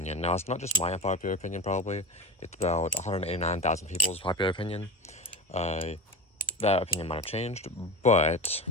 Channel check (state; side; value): normal; both; correlation 0.26